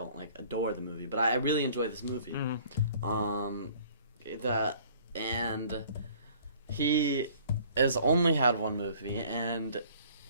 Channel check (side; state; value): both; inverted; correlation -0.54